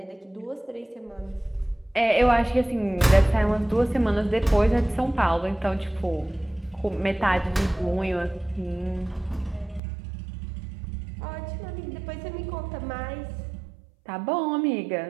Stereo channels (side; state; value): left; drops out; at 9.8 s